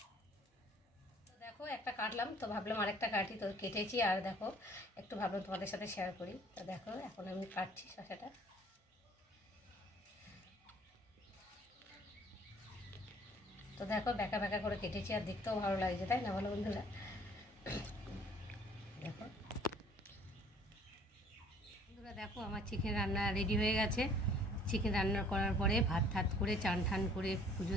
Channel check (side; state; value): both; normal; correlation 0.55